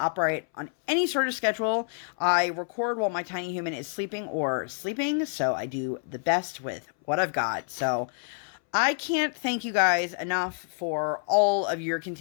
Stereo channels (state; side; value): silent; right; 60 dB below the other